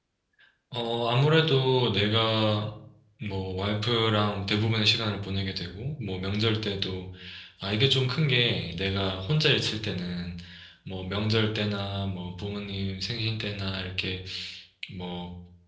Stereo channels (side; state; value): both; identical; correlation 1.00